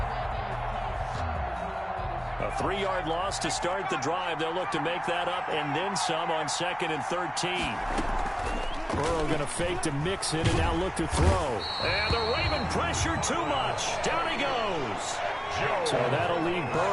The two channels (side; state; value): both; identical; correlation 1.00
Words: A 3-yard loss to start the drive. They'll look to make that up and then some on 2nd and 13. Burrow going to fake to Mixon and now look to throw. And the Raven pressure too much. Down he goes. So that'll leave